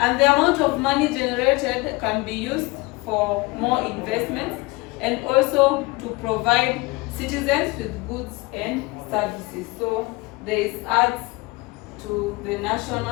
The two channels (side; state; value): right; quieter; 23.7 dB